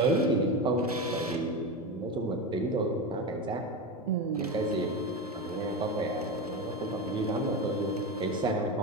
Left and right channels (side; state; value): both; normal; correlation 0.20